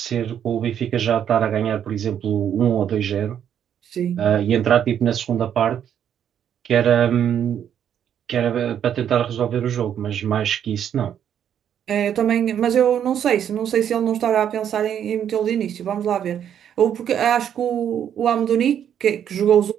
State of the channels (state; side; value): quieter; left; 9.3 dB